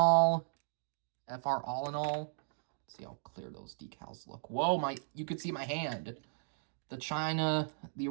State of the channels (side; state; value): left; silent; digital silence